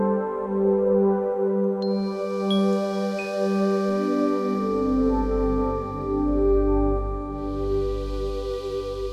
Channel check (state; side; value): identical; both; correlation 1.00